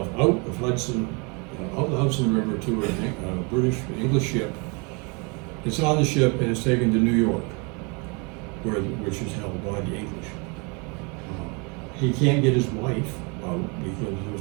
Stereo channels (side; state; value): left; quieter; 31.4 dB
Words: out of Hudson, out the Hudson River to a English ship. It's on the ship and it's taken to New York, which is held by the English. He can't get his wife out because there